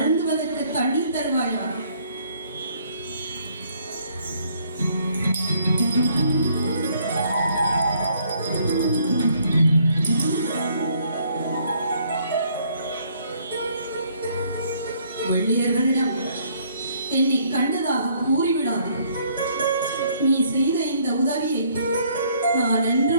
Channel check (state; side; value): inverted; both; correlation -0.65